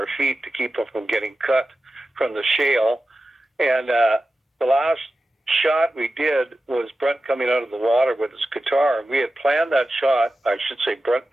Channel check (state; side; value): normal; both; correlation 0.93